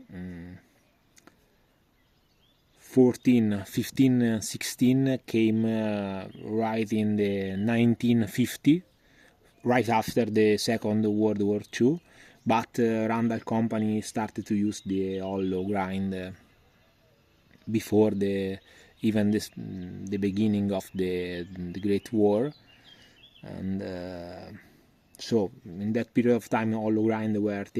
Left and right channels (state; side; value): identical; both; correlation 1.00